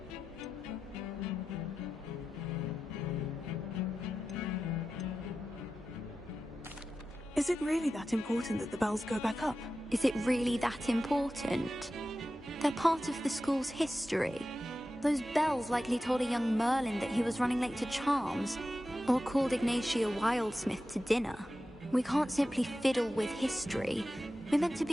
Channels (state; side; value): normal; both; correlation 0.92